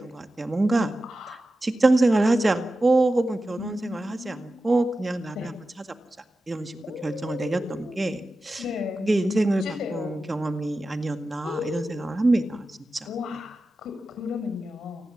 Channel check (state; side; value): normal; both; correlation 0.93